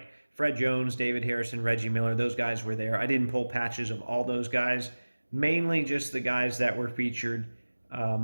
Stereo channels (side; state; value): both; inverted; correlation -1.00